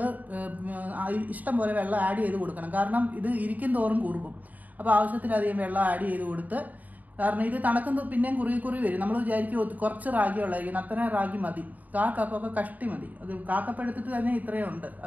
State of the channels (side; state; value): left; late; 0.078 ms